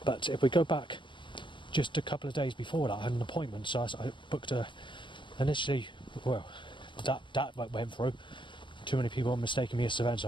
But if we go back just a couple of days before that, I had an appointment, so I booked initially, well, that went through. Too many people mistaking me as Savannah, so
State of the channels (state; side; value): late; right; 0.23 ms